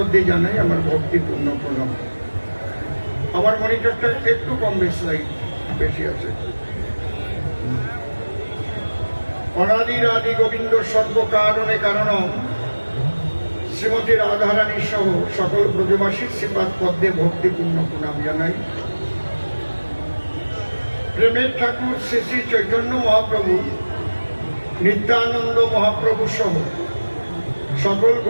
জানাই আমার ভক্তিপূর্ণ প্রণাম। আমার মনিটরটা একটু কম বেশি আছে। অনাদির আদি গোবিন্দ সর্বকারণে কারণম শ্রীমতী রাধারানী সহ সকল ব্রজবাসীর শ্রীপাদ পদ্মে ভক্তিপূর্ণ প্রণাম জানাই। প্রেমের ঠাকুর শ্রী শ্রী চৈতন্য মহাপ্রভু, নিত্যানন্দ মহাপ্রভু সহ সকল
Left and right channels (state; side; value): inverted; both; correlation -1.00